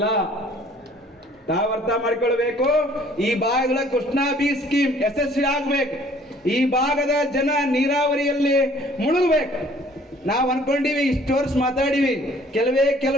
ತಾವು ಅರ್ಥ ಮಾಡ್ಕೊಳ್ಬೇಕು. ಈ ಭಾಗದ ಕೃಷ್ಣಾ ಬಿ ಸ್ಕೀಮ್ ಯಶಸ್ವಿ ಆಗ್ಬೇಕು. ಈ ಭಾಗದ ಜನ ನೀರಾವರಿಯಲ್ಲಿ ಮುಳುಗಬೇಕು. ನಾವ್ ಅನ್ಕೊಂಡಿವಿ ಇಷ್ಟು ವರ್ಷ ಮಾತಾಡಿವಿ,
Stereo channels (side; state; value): both; normal; correlation 0.56